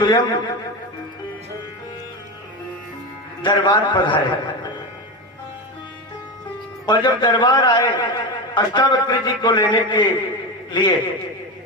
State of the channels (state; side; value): normal; both; correlation 0.20